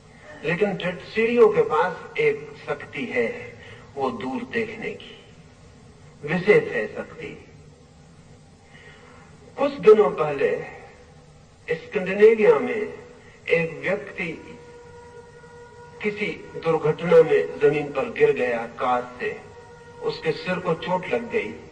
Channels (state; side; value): identical; both; correlation 1.00